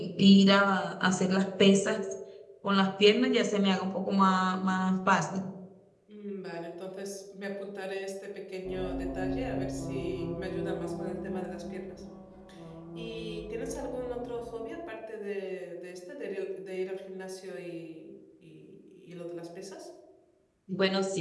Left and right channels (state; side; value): identical; both; correlation 1.00